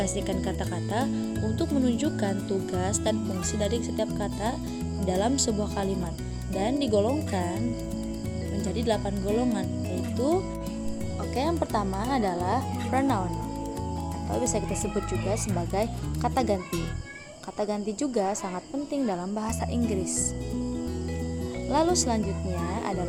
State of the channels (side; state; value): both; identical; correlation 1.00